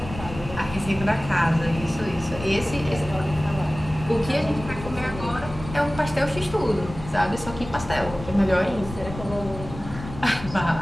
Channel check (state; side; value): noise; left; rumble, 12 dB below the sound